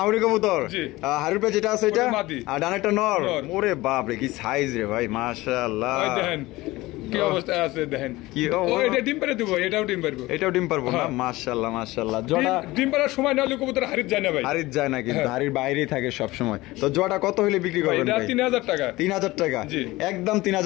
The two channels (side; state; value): right; quieter; 19.4 dB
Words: কবুতর। হারুর পে যেটা আছে এটা, মাদি। আর ডানেরটা নর। ওরে বাপ রে, কি সাইজ রে ভাই, মাশাআল্লাহ। ভাই দেখেন কি অবস্থা আছে, দেখেন কি। ও এটা ডিম পারে দেব, এটাও ডিম পারবো, এটাও ডিম পারবো না। মাশাআল্লাহ মাশাআল্লাহ। জোড়া ডিম পারার সময় না হলে কবুতর হারিত যায় না ভাই। হারিত যায় না, কিন্তু হারির বাইরেই থাকে সব সময়। তো জোড়া কত হলে বিক্রি করবেন ভাই? 3000 টাকা। 3000 টাকা, একদম